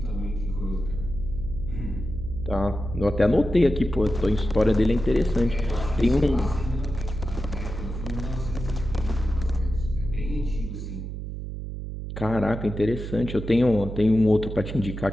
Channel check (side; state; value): right; noise; hum, 7 dB below the sound